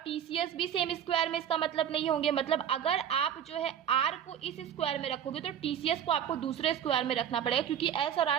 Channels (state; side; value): quieter; left; 9.4 dB